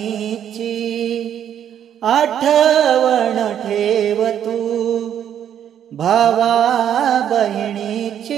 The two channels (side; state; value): left; quieter; 9.7 dB